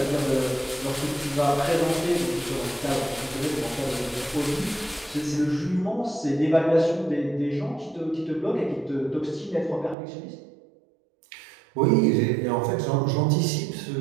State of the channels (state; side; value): drops out; left; at 10.0 s